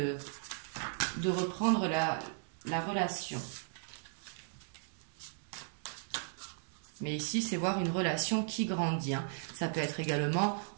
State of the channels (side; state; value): left; silent; digital silence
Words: reprendre la relation. Mais ici, c'est voir une relation qui grandit. Hein. Ça peut être également